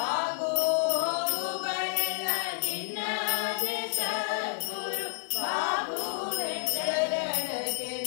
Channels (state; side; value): silent; right; digital silence